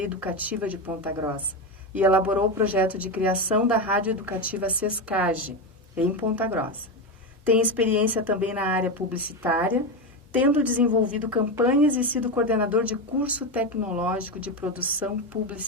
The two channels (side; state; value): both; normal; correlation 0.14